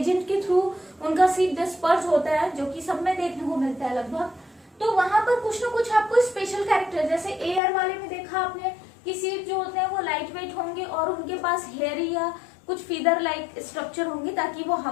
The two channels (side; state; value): right; drops out; at 7.6 s